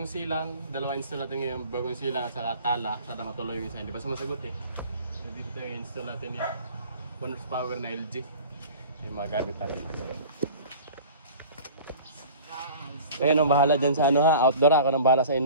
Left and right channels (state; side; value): inverted; both; correlation -0.43